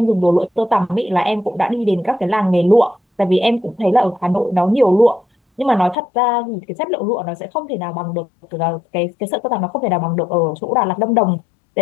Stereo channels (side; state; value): right; drops out; at 6.0 s